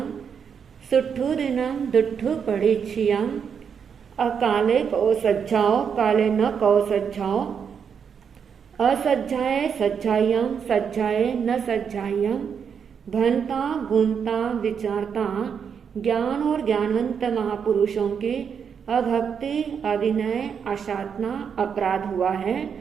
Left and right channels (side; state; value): left; quieter; 7.0 dB